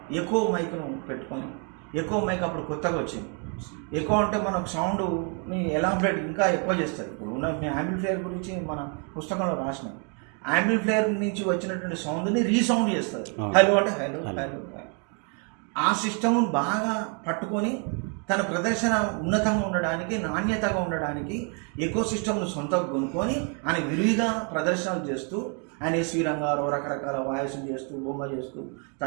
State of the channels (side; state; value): left; quieter; 38.7 dB